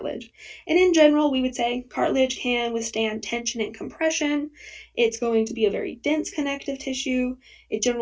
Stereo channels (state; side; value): identical; both; correlation 1.00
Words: And in general, we would say cartilage can withstand tension and compression. It's going to be a very dense connective tissue. It